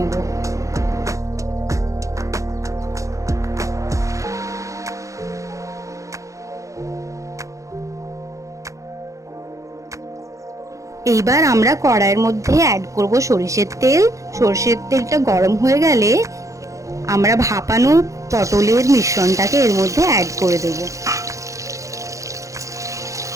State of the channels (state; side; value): late; left; 0.15 ms